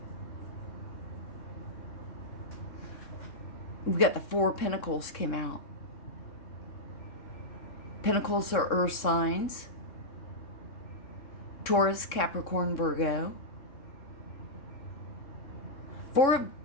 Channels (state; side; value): late; right; 3.6 ms